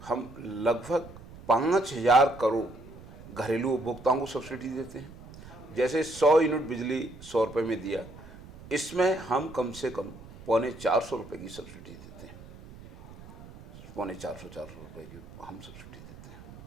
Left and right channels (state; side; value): noise; right; rumble, 17 dB below the sound